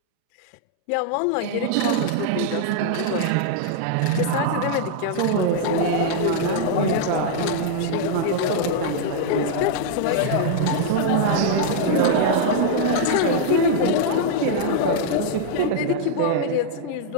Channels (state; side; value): different; both; correlation -0.01